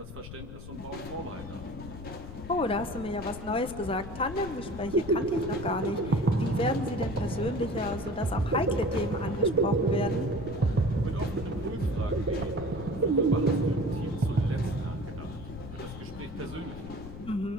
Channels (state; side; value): noise; left; rumble, 11 dB below the sound